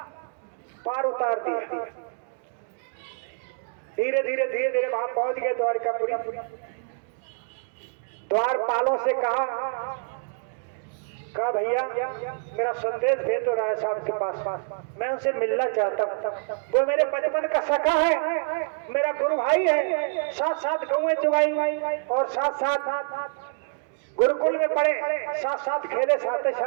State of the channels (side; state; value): left; silent; digital silence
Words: पार उतार दिया। धीरे धीरे धीरे धीरे वहां पहुंच गए द्वारकापुरी। द्वारपालों से कहा भैया मेरा संदेश भेज दो राय साहब के पास, मैं उनसे मिलना चाहता हूँ। वो मेरे बचपन का सखा है, मेरा गुरु भाई है, साथ साथ गौएं चुगाई और साथ साथ गुरुकुल में पढ़े, साथ साथ खेले, साथ